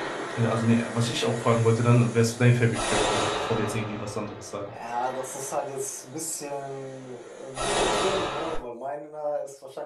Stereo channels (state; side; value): identical; both; correlation 1.00